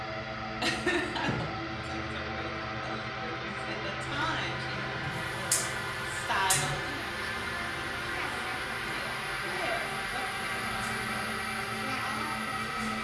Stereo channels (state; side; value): identical; both; correlation 1.00